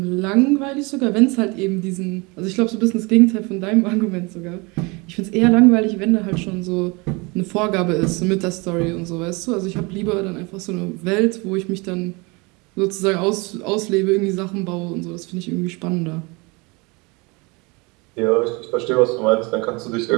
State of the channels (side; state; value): left; quieter; 27.3 dB